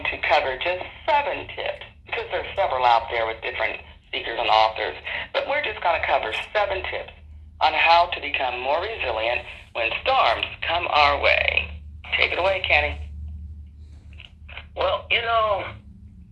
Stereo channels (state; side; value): identical; both; correlation 1.00